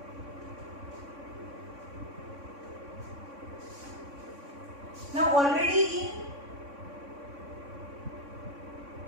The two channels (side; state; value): left; late; 3.6 ms